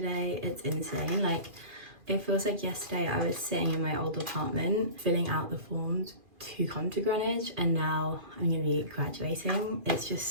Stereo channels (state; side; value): late; left; 2.5 ms